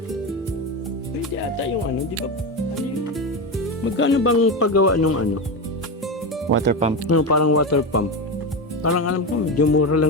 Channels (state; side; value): normal; both; correlation 0.17